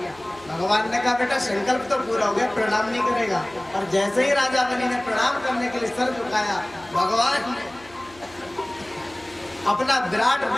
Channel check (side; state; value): left; noise; hum, 24 dB below the sound